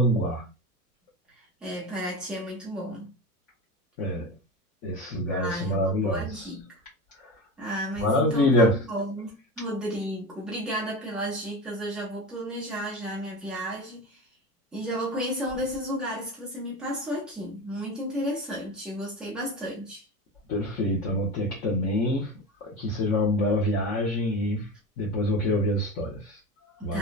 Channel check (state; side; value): normal; both; correlation 0.26